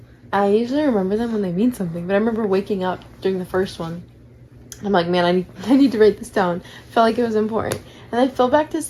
I usually remember them when they mean something, but I remember waking up during the first one. I'm like, man, I need to write this down. Felt like it was important. And I fell back to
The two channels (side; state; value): both; identical; correlation 1.00